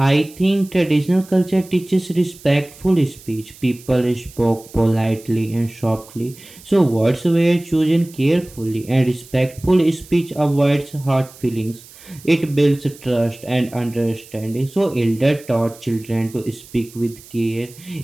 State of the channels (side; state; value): right; noise; hiss, 21 dB below the sound